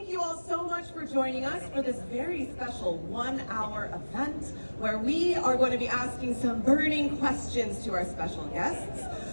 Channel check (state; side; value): inverted; both; correlation -1.00